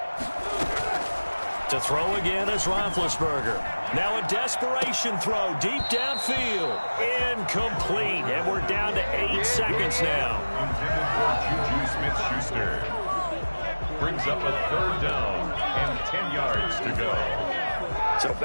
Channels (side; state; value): both; inverted; correlation -1.00